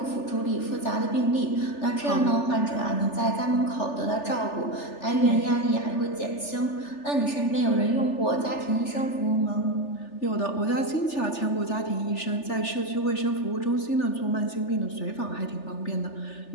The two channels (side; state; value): right; late; 3.4 ms